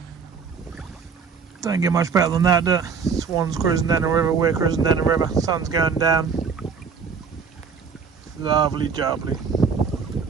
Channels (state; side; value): quieter; left; 5.8 dB